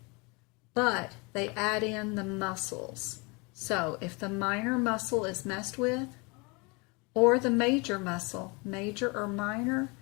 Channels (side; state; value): right; quieter; 28.9 dB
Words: but they add in the muscles. So if the minor muscle is messed with, or the major muscle, major or minor,